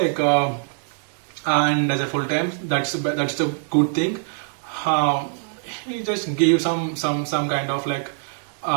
and as a full time, that's the good thing. He just gave some kind of like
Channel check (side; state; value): left; silent; 63 dB below the other